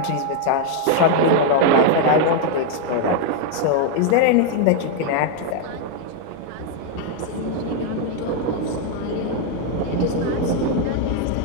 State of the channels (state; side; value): different; both; correlation 0.00